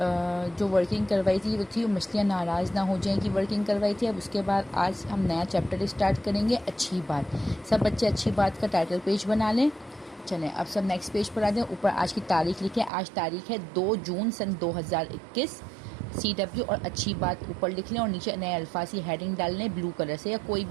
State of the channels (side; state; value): left; drops out; at 12.9 s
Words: जो वर्किंग करवाई थी वो थी मछलियाँ नाराज़ ना हो जाएं की वर्किंग करवाई थी। अब उसके बाद आज हम नया चैप्टर स्टार्ट करेंगे, अच्छी बात। सब बच्चे अच्छी बात का टाइटल पेज बना लें। चलें अब सब नेक्स्ट पेज पर आ जाएं। ऊपर आज की तारीख लिखें। आज तारीख है 2 जून सन 2021। CW और अच्छी बात ऊपर लिख लें और नीचे नए अल्फाज की हेडिंग डाल लें ब्लू कलर से या कोई